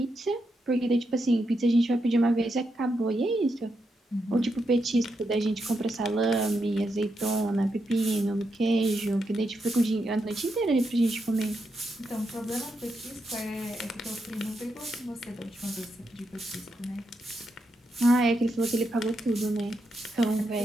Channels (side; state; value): both; normal; correlation 0.83